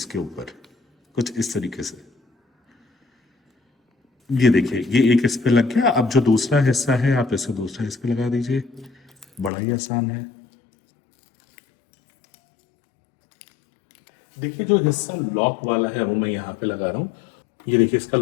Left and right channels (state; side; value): drops out; right; at 9.5 s